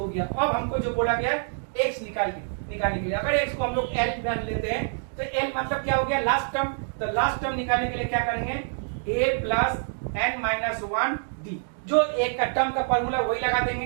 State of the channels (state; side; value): silent; left; digital silence